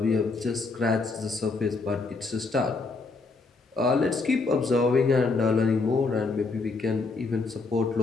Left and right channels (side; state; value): right; quieter; 3.9 dB